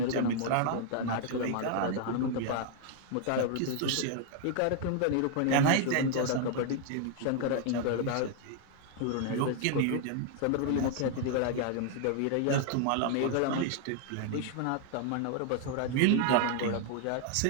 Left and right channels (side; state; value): both; different; correlation 0.00